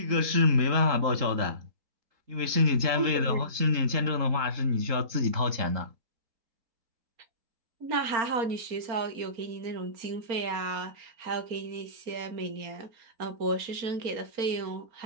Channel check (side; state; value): left; late; 3.8 ms